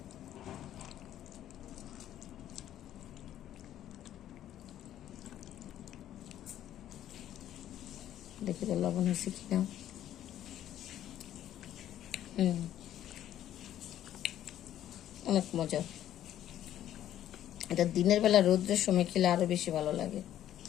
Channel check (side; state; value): right; quieter; 11.8 dB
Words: দেখি তো লবণ হয়েছে কিনা। অনেক মজা। এটা দিনের বেলা রৌদ্রের সময় খেলে আরো বেশি ভালো লাগে।